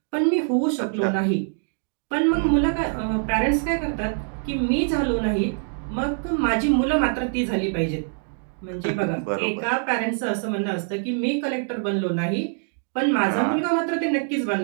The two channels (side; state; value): left; silent; 62 dB below the other